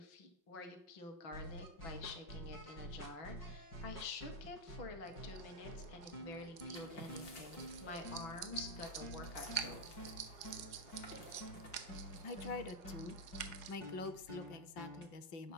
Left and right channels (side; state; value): right; late; 4.9 ms